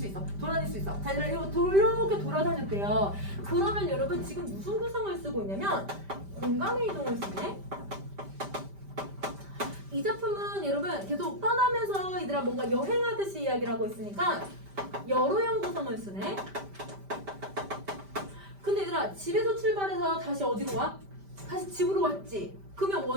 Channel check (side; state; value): left; late; 5.1 ms